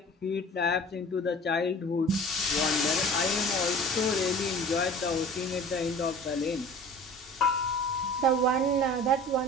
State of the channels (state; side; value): normal; both; correlation 0.43